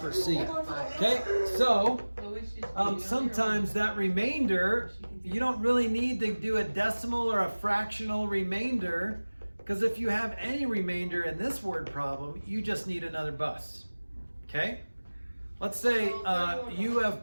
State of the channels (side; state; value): both; inverted; correlation -1.00